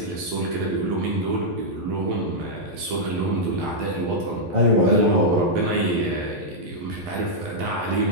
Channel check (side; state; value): left; late; 11 ms